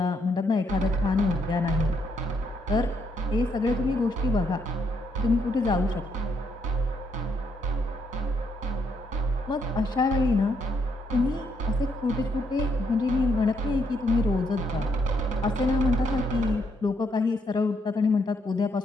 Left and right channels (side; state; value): both; normal; correlation 0.75